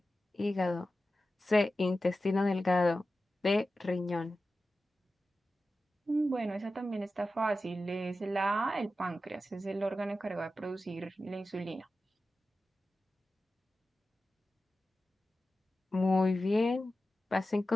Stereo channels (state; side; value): normal; both; correlation 0.93